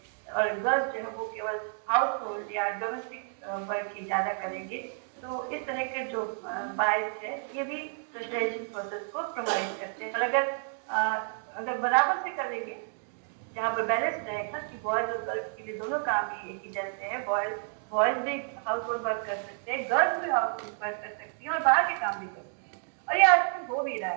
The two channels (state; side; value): silent; left; 58 dB below the other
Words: और गर्ल्स जो है वो केवल हाउस होल्ड या डोमेस्टिक वर्क ही ज्यादा करेंगे। तो इस तरह के जो बायस है ये भी सोशलाइजेशन प्रोसेस को प्रभावित करते हैं। और अगर बराबर से करेंगे, जहाँ पर बैलेंस रहेगा कि बॉयज और गर्ल्स के लिए दोनों काम ही एक ही जैसे हैं, बॉयज भी हाउस होल्ड वर्क कर सकते हैं, गर्ल्स भी हाउस होल्ड वर्क कर सकती हैं और बाहर के काम भी कर सकते हैं, और ये आजकल हो भी रहा